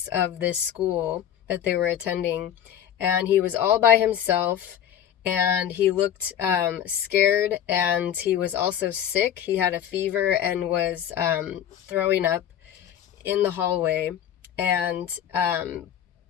of this school that they were attending, and he was all by himself, and he looked scared, and he was also sick. He had a fever and was throwing up in the hallway. And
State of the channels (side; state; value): right; quieter; 10.0 dB